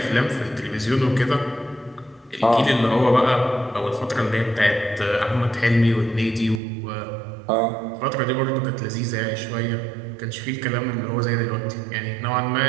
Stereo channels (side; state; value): left; drops out; at 6.6 s